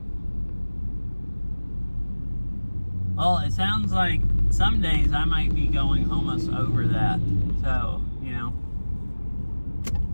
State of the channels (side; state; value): both; inverted; correlation -1.00